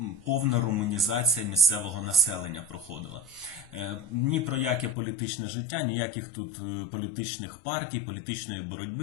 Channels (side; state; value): right; drops out; at 5.0 s